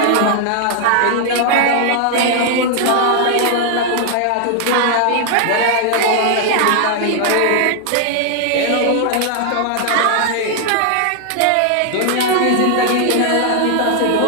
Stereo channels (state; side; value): different; both; correlation 0.00